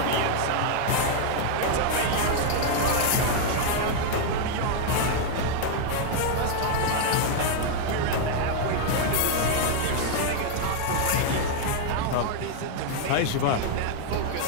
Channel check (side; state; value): both; different; correlation 0.00